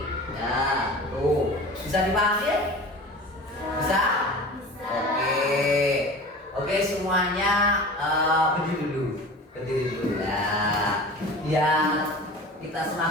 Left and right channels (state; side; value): normal; both; correlation 0.37